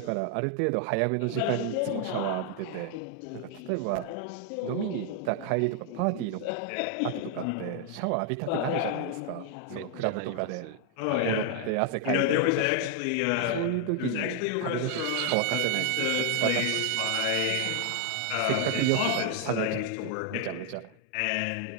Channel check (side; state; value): both; different; correlation 0.00